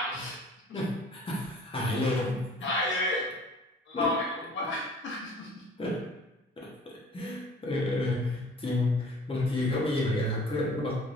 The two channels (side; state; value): both; normal; correlation 0.50